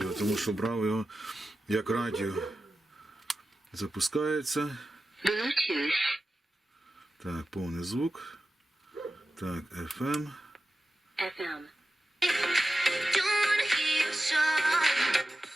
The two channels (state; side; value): normal; both; correlation 0.93